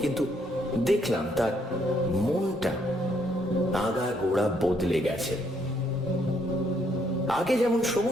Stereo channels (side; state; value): both; normal; correlation 0.71